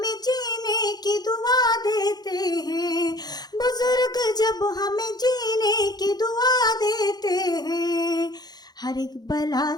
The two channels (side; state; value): right; late; 0.19 ms